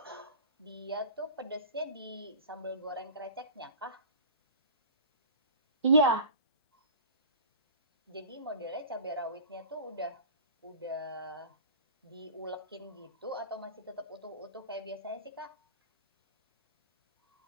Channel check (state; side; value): inverted; both; correlation -0.38